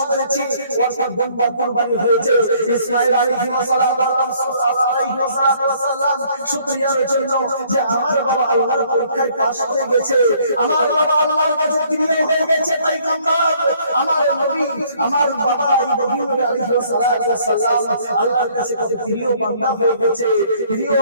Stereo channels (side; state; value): both; inverted; correlation -0.61